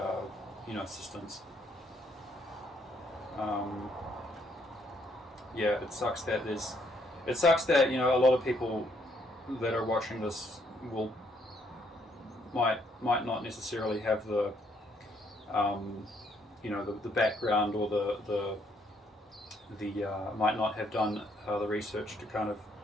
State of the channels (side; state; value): both; normal; correlation 0.70